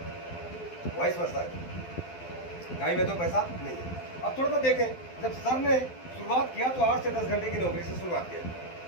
वाइस वर्सा है। टाइम है तो पैसा नहीं है। अब थोड़ा सा देखें, जब सर ने शुरुआत किया तो 8 से 10 घंटे की नौकरी से शुरुआत किया।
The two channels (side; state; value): right; late; 12 ms